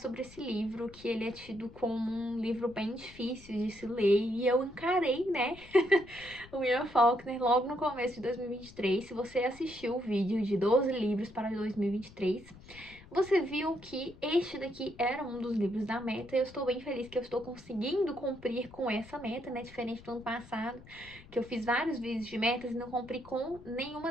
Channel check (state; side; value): noise; left; rumble, 20 dB below the sound